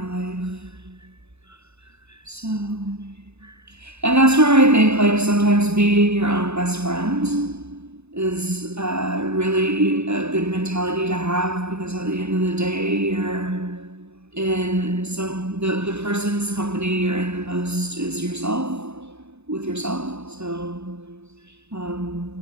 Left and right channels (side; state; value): left; late; 0.80 ms